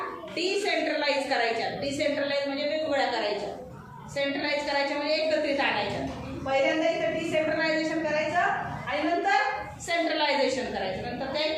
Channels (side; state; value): both; identical; correlation 1.00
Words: डिसेंट्रलाइज करायच्या. डिसेंट्रलाइज म्हणजे वेगवेगळ्या करायच्या. सेंट्रलाइज करायच्या म्हणजे एकत्रित आणायच्या. पहिल्यांदा इथं डिसेंट्रलायझेशन करायचं आणि नंतर सेंट्रलायझेशन करायचं, नंतर त्या